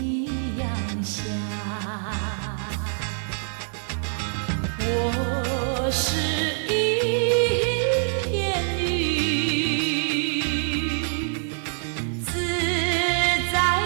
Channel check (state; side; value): silent; left; digital silence